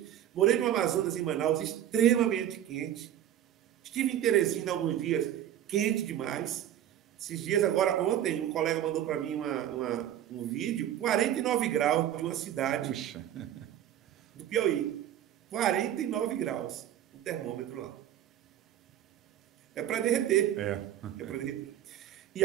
Morei no Amazonas, em Manaus, extremamente quente. Estive em Teresina alguns dias, quente demais. Esses dias, agora, ontem, um colega mandou para mim um vídeo, 49 graus de uma cidade do Piauí. 49 graus, o termômetro lá. É para derreter. É para derreter. E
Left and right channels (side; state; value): left; quieter; 11.2 dB